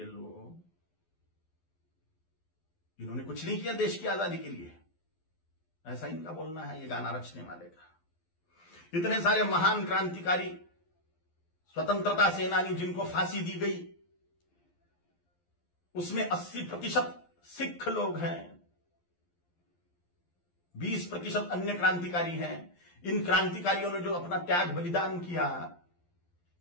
लोग, इन्होंने कुछ नहीं किया देश की आजादी के लिए, ऐसा इनका बोलना है ये गाना रचने वाले का। इतने सारे महान क्रांतिकारी, स्वतंत्रता सेनानी जिनको फांसी दी गई, उसमें 80% सिख लोग हैं, 20% अन्य क्रांतिकारी हैं। इन क्रांतिकारियों ने जो अपना त्याग बलिदान किया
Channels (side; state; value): right; late; 12 ms